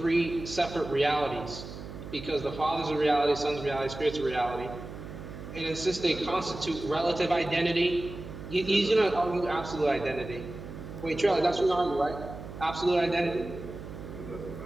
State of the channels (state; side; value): noise; right; hum, 11 dB below the sound